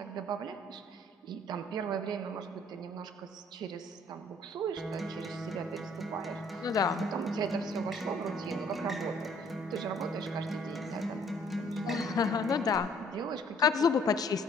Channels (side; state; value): both; normal; correlation 0.60